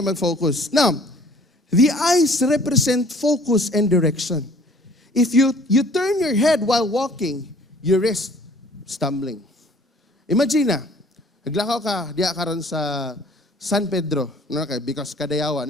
mag-focus. Now, the eyes represent focus and direction. If you turn your head while walking, you risk stumbling. Imagine naglakaw ka, diya karon sa San Pedro, because Kadayawan,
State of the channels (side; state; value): both; normal; correlation 0.54